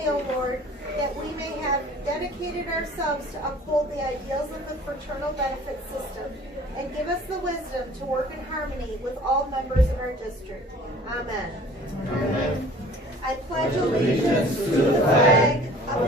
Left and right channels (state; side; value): normal; both; correlation 0.49